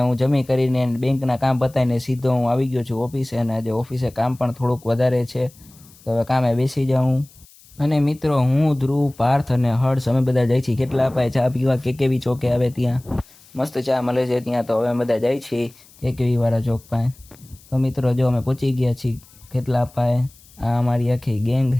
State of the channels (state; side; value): noise; left; hiss, 26 dB below the sound